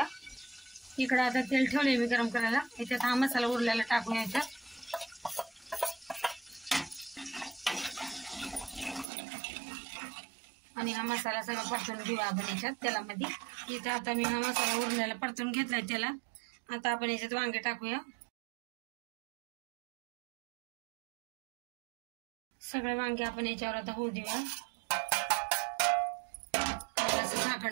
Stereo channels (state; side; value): drops out; left; at 9.1 s